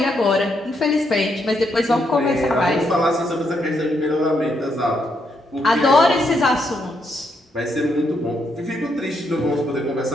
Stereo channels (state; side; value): normal; both; correlation 0.77